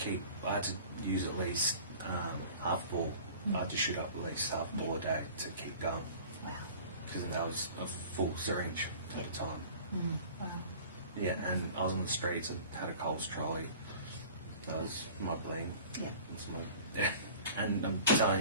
I had to use at least half a ball. I had to shoot up at least half a ball a day to keep going. Wow. Because that was a full syringe at the time. Wow. Yeah, and I was on the streets. I had a Coles trolley. That was my bling. Yeah. And I'm telling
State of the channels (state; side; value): inverted; both; correlation -0.44